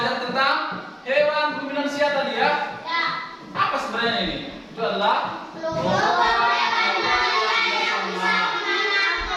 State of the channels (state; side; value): identical; both; correlation 1.00